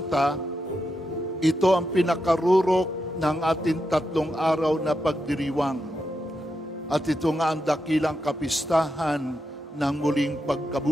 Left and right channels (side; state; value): both; normal; correlation 0.86